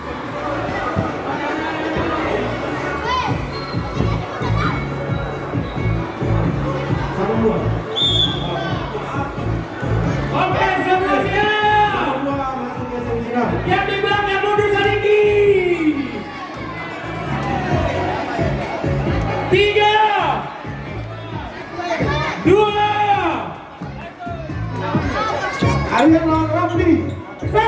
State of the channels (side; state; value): both; identical; correlation 1.00